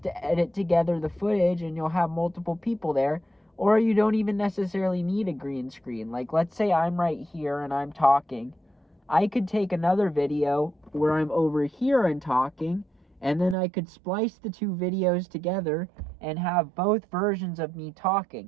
to edit together the footage and you'll have multiple people there. Or you don't even necessarily need a green screen. Like, let's say I'm right here and I'm talking. I could take another video where I'm over here and talking, and then I could splice the two videos together and have both versions of me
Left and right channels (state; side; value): drops out; left; at 13.6 s